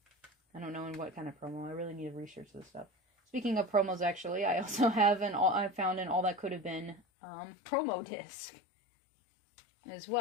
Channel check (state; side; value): drops out; right; at 7.0 s